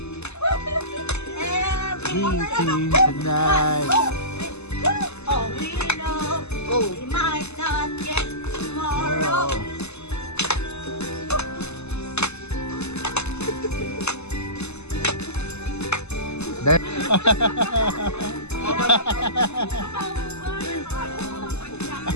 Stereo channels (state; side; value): late; right; 0.80 ms